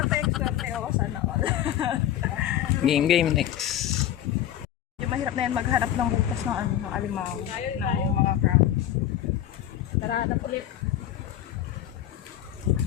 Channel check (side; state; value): right; quieter; 11.6 dB